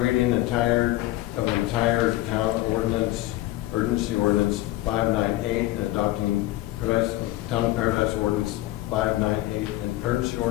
of the entire town ordinance, urgency ordinance 598, and adopting Town of Paradise ordinance 598, and urgency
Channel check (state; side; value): quieter; right; 16.8 dB